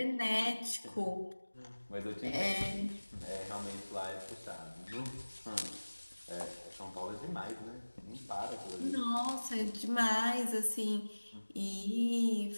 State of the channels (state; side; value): inverted; both; correlation -1.00